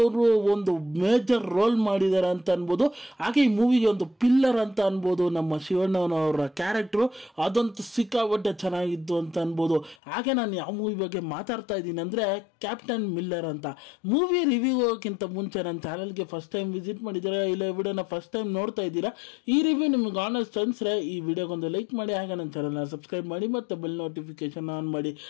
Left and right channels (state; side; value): drops out; right; at 10.0 s